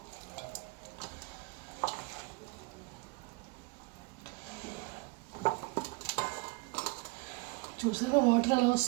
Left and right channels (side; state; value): left; quieter; 26.4 dB